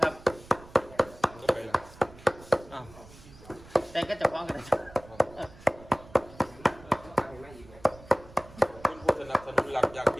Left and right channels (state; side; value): noise; right; rumble, 21 dB below the sound